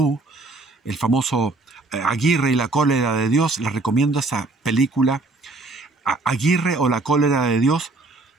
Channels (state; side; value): quieter; left; 3.2 dB